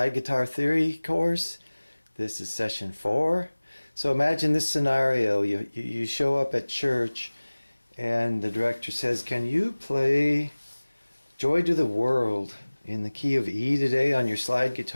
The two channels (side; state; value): both; inverted; correlation -1.00